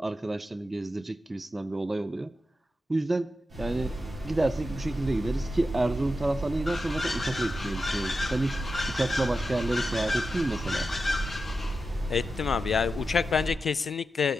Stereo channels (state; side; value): normal; both; correlation 0.90